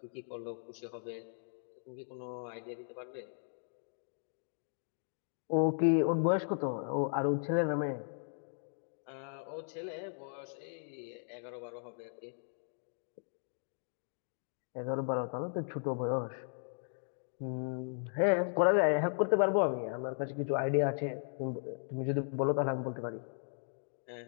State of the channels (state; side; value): silent; right; digital silence